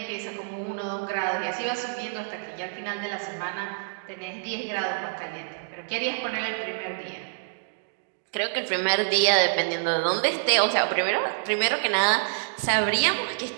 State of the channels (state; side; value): silent; left; digital silence